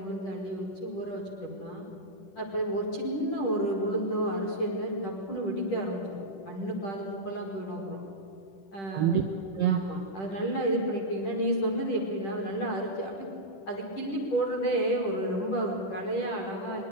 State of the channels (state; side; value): late; right; 10 ms